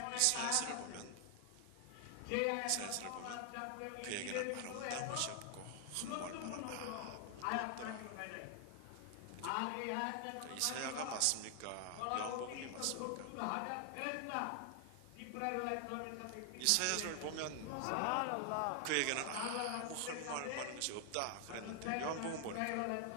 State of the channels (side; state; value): both; different; correlation 0.00